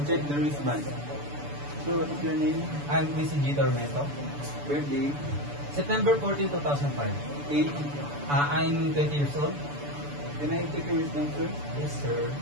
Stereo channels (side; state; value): left; late; 6.9 ms